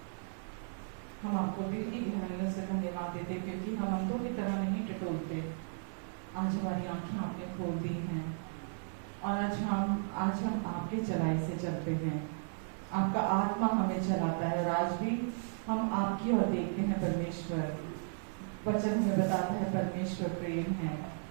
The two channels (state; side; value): silent; left; 54 dB below the other